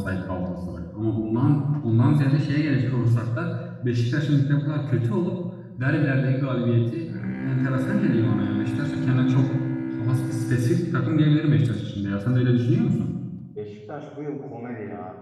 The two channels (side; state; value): both; identical; correlation 1.00